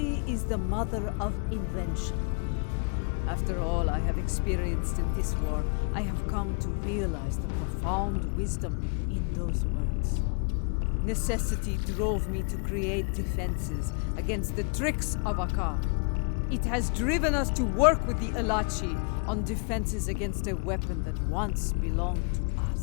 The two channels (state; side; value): quieter; right; 38.2 dB